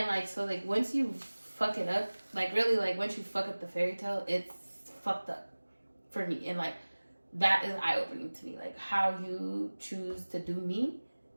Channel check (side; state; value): both; inverted; correlation -1.00